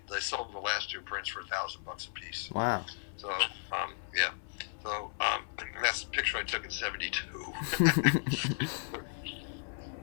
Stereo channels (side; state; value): right; silent; 55 dB below the other